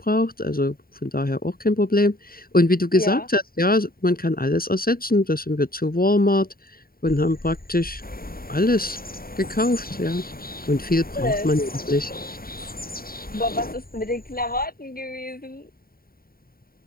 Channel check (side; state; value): right; late; 0.43 ms